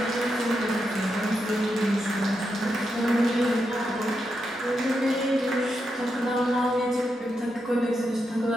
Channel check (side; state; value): both; normal; correlation 0.84